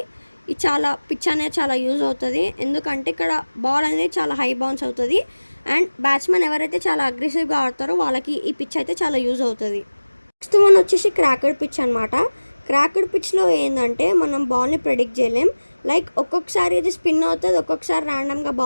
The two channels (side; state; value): both; inverted; correlation -1.00